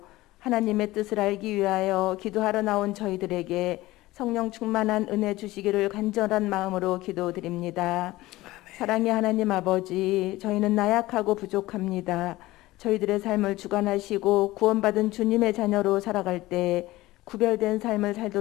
하나님의 뜻을 알기 위하여 기도하러 나온 저희들에게 성령 충만한 은혜 주시기를 간절한 마음으로 기도드립니다. 사랑의 하나님 아버지, 저희는 나약하고 부족합니다. 저희들의 삶을 주관하시고 구원받은 주님의 자녀로 살아갈 때 구별된 삶을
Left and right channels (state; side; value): quieter; right; 18.2 dB